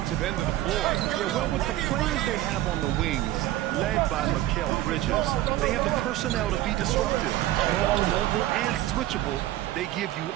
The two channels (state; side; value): quieter; left; 14.9 dB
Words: end of the floor. Yeah, well, with the players they have on the wings, led by Mikal Bridges, they have the personnel to be disruptive. Long, mobile, and switchable. They give